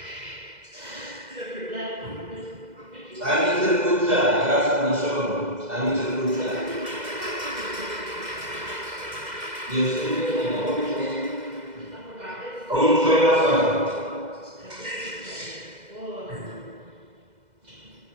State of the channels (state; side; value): late; left; 2.0 ms